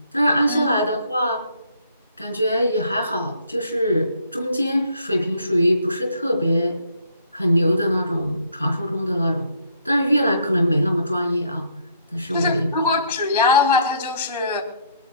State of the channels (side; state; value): both; inverted; correlation -0.65